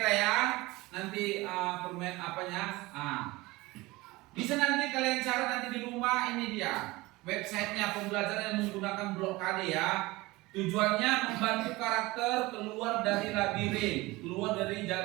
ya. Nanti permain apanya? Bisa nanti kalian cari nanti di rumah, ini dia. Websitenya pembelajaran yang menggunakan blok KD ya. Tujuannya membantu karakter keluar dari labirin, keluar dari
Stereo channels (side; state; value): left; quieter; 21.1 dB